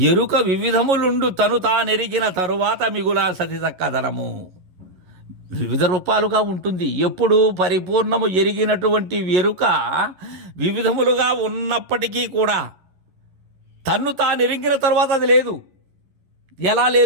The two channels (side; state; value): left; late; 11 ms